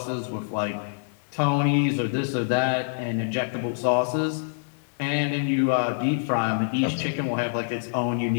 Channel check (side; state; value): right; silent; digital silence